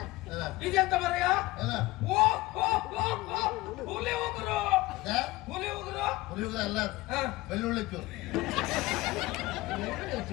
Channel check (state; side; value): quieter; right; 19.7 dB